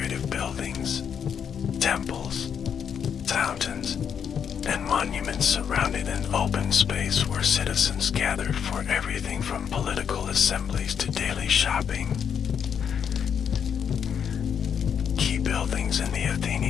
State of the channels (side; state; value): right; quieter; 7.8 dB